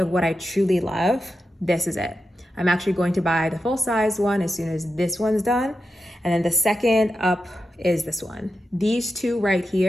what I truly love, this is it. I'm actually going to buy the full size one as soon as this one's done. And then the second up is this one. These two right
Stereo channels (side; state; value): both; normal; correlation 0.89